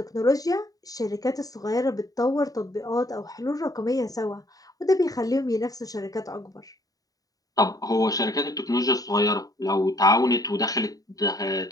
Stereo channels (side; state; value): right; late; 0.18 ms